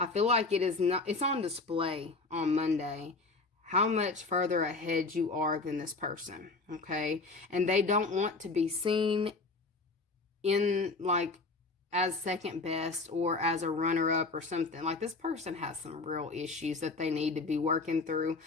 I feel like it's on display on Monday how much further ahead you are than this person. Okay, and they don't want to be seen in like as second best or as a runner-up or something. Like this person has some real issues that they need to be working through.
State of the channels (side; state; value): right; quieter; 3.6 dB